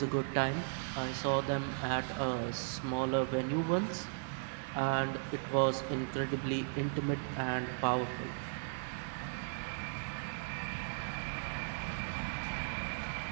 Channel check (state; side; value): silent; left; digital silence